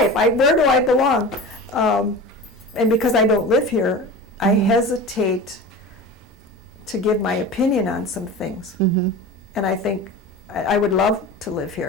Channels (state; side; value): normal; both; correlation 0.33